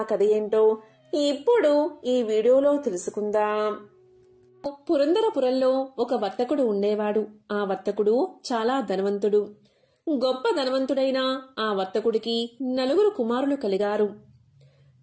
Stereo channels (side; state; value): both; identical; correlation 1.00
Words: కథ ఏంటో ఇప్పుడు ఈ వీడియోలో తెలుసుకుందాం. పురందరపురంలో ఒక వర్తకుడు ఉండేవాడు. ఆ వర్తకుడు చాలా ధనవంతుడు. గొప్ప ధనవంతుడైన ఆ వర్తకుడికి 4 కుమారులు కలిగారు.